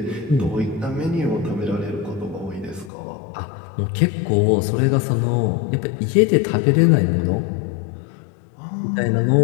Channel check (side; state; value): right; drops out; at 2.9 s